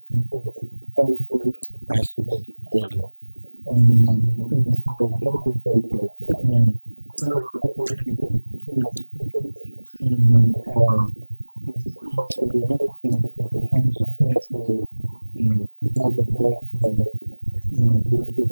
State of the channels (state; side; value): inverted; both; correlation -1.00